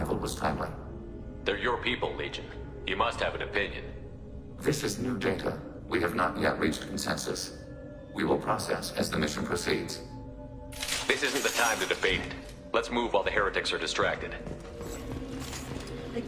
was timely. They're your people, Legion. You must have an opinion. This is new data. We have not yet reached consensus. We will process as the mission proceeds. This isn't the time to debate it. Let's move while the heretics are distracted. The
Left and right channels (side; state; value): both; identical; correlation 1.00